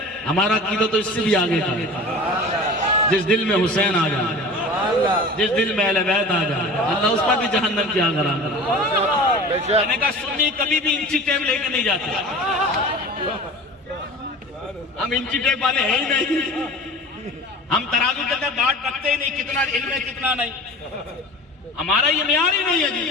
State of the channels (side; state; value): both; normal; correlation 0.38